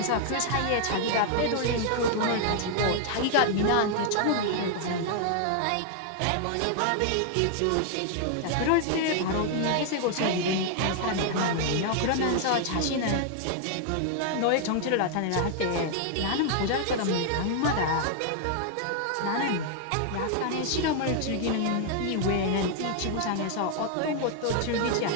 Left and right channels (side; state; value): both; different; correlation 0.00